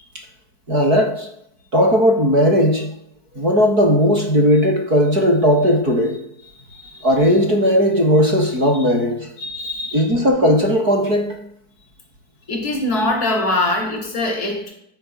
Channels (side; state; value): left; late; 4.6 ms